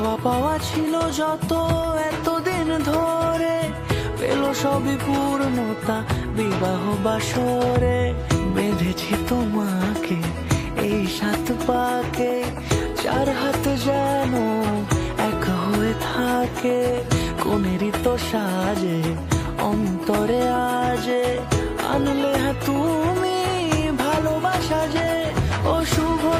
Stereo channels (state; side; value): identical; both; correlation 1.00